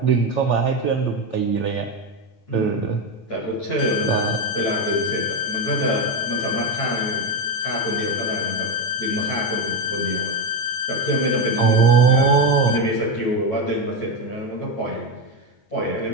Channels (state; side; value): late; right; 9.0 ms